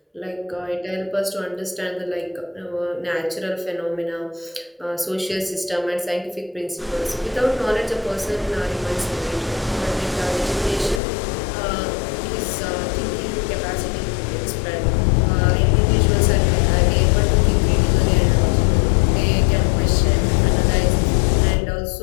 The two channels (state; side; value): drops out; right; at 11.0 s